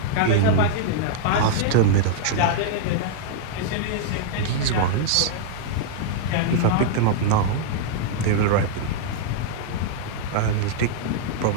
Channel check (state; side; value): different; both; correlation -0.01